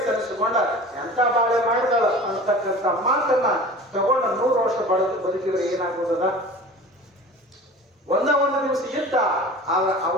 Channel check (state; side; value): normal; both; correlation 0.39